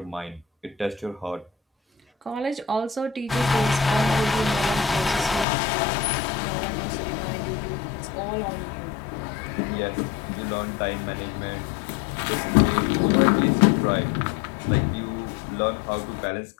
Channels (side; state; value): right; drops out; at 5.5 s